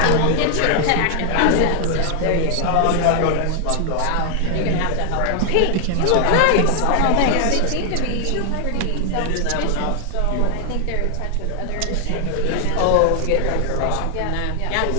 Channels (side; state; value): both; different; correlation 0.00